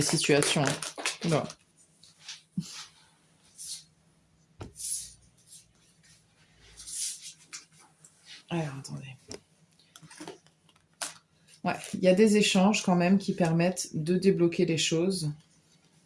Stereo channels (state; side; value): identical; both; correlation 1.00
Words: situations. Bon. Alors, attendez. Ouais, il y a des échanges quand même qui permettent de débloquer les choses.